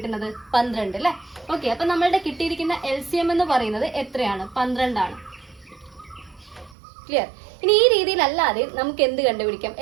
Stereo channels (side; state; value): left; drops out; at 6.8 s